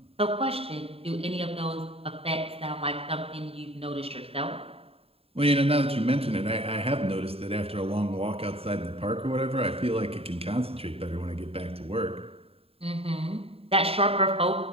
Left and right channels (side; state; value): left; late; 0.28 ms